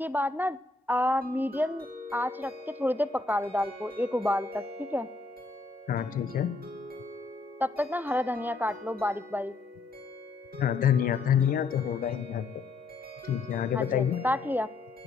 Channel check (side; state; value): right; quieter; 3.8 dB